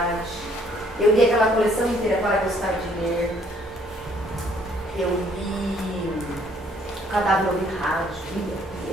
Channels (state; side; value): normal; both; correlation 0.64